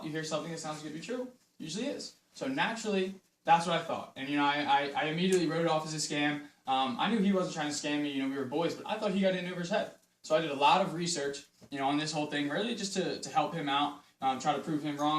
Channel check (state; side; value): identical; both; correlation 1.00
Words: you hear something that sounds good to be true, usually is. So naturally, that's what I thought. And, you know, I immediately wrote it off as a scam. I knew he wasn't trying to scam me, you know, we were boys, but I thought he got in over his head. So I did a lot of research, you know, on this whole thing, really just to help him out, try to prove him